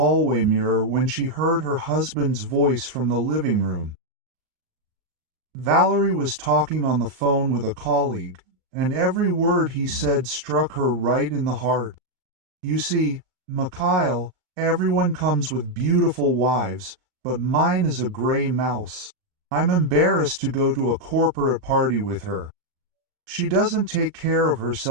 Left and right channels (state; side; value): late; left; 38 ms